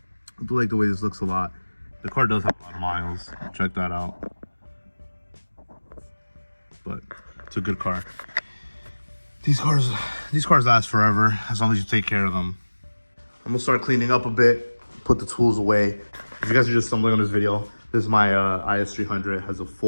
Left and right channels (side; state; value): both; inverted; correlation -1.00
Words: do like the way this looks a lot. The car does have a lot of miles, check that out. But it's a good car. These cars last forever, as long as you take care of them. I'm gonna start cleaning up a bit, put the tools away. If you guys are just stumbling on this video, this is my IS300. It has a